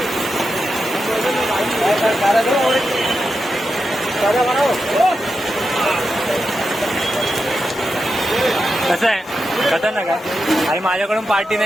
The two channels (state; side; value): normal; both; correlation 0.88